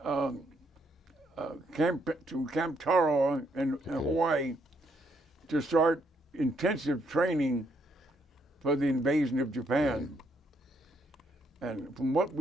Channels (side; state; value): both; normal; correlation 0.73